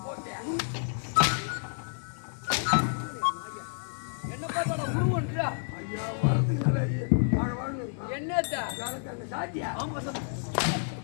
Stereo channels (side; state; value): right; silent; digital silence